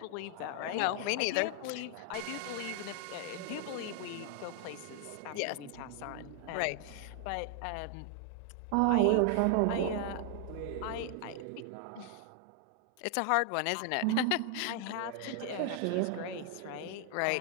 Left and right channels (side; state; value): both; different; correlation 0.00